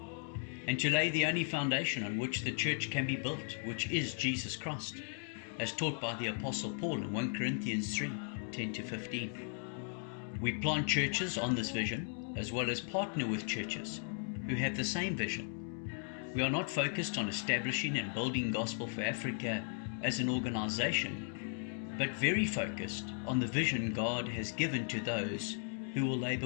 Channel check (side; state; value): right; silent; 53 dB below the other